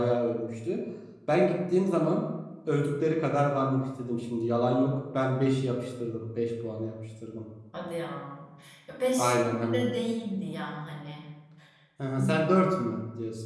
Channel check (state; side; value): identical; both; correlation 1.00